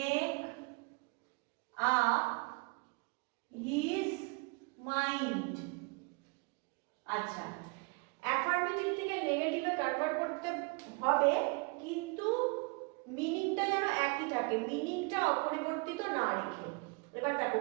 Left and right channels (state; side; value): quieter; left; 31.1 dB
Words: up his mind. আচ্ছা, অ্যাফার্মেটিভ থেকে নেগেটিভে কনভার্ট করতে হবে, কিন্তু মিনিংটা যেন একই থাকে, মিনিংটা অপরিবর্তিত না রেখে। এবার দেখো